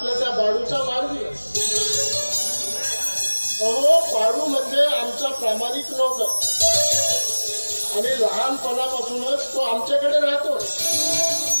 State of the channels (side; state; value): both; inverted; correlation -1.00